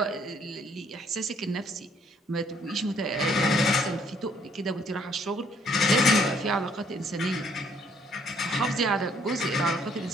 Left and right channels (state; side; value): normal; both; correlation 0.65